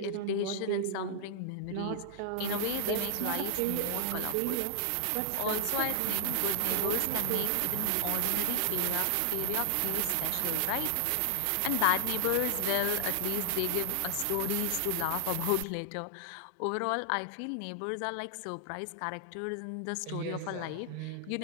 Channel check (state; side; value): different; both; correlation -0.01